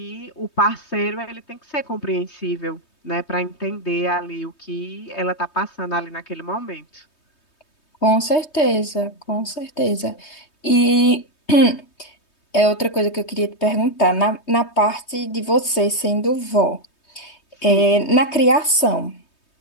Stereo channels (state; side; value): late; right; 3.2 ms